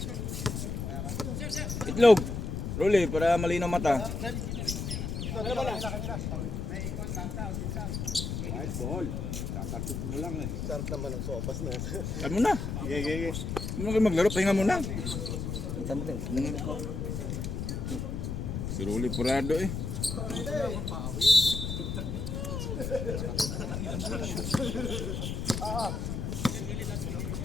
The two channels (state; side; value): noise; left; rumble, 3 dB below the sound